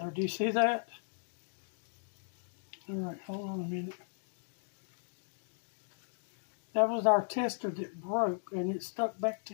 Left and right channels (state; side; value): silent; right; digital silence